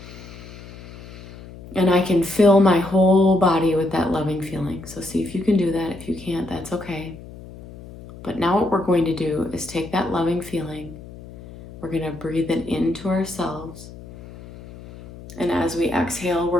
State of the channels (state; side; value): noise; left; hum, 16 dB below the sound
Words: And I can fill my whole body with that loving feeling. So see if you can do that. If you can't, that's okay. But now what we're going to do is take that loving feeling. We're going to breathe it into ourselves. And as we exhale,